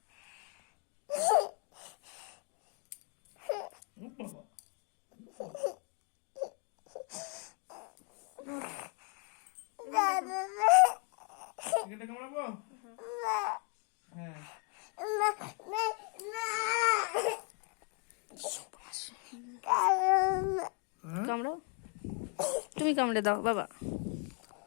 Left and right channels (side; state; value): right; quieter; 36.7 dB